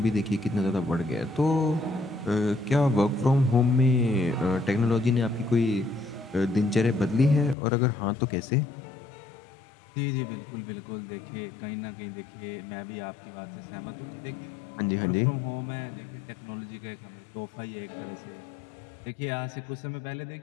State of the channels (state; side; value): drops out; right; at 7.6 s